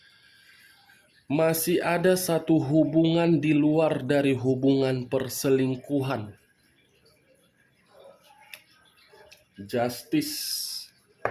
Masih ada satu hubungan di luar dari hubungan perselingkuhan. Justice.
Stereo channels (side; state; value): both; identical; correlation 1.00